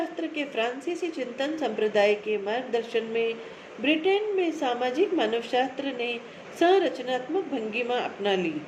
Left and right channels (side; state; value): both; identical; correlation 1.00